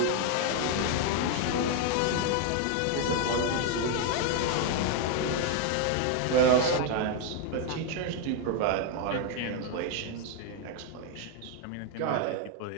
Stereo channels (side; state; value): both; different; correlation 0.01